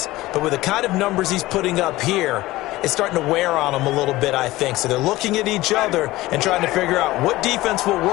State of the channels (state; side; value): quieter; right; 18.0 dB